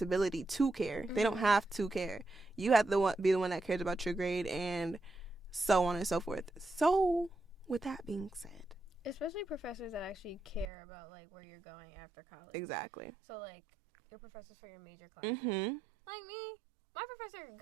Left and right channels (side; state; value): left; drops out; at 10.7 s